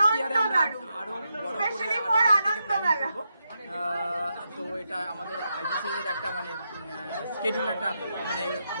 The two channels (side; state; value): both; inverted; correlation -0.84